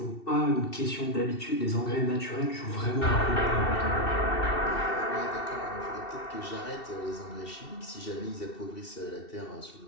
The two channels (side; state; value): right; late; 2.7 ms